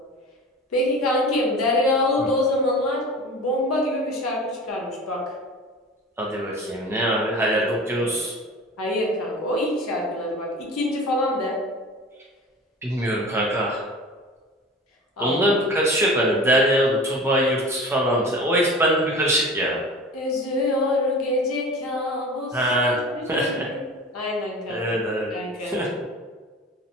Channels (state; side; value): normal; both; correlation 0.37